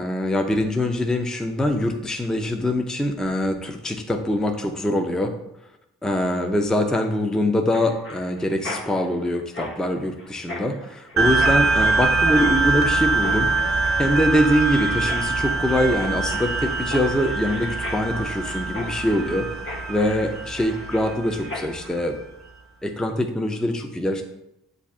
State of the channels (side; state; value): both; normal; correlation 0.76